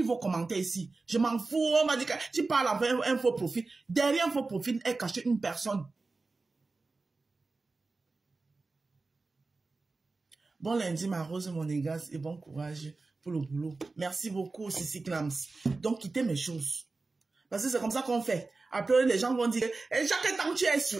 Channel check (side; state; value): left; quieter; 3.7 dB